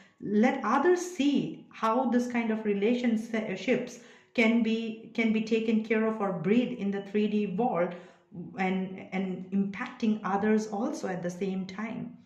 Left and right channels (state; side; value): identical; both; correlation 1.00